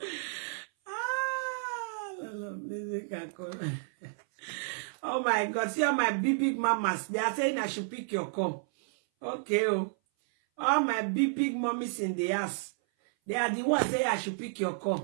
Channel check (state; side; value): silent; left; 57 dB below the other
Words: Oh my God, see all my big mamas. They are saying I should pick your call. Okay, oh. All my big mommies in the house. They are the ones saying I should pick your